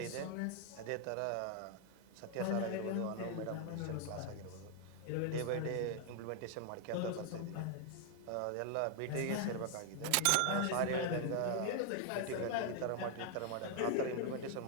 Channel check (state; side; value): different; both; correlation 0.00